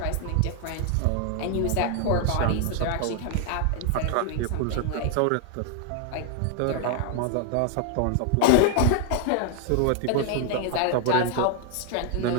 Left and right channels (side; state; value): both; different; correlation 0.00